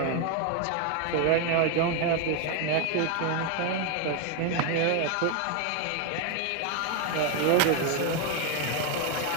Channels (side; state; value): both; different; correlation 0.01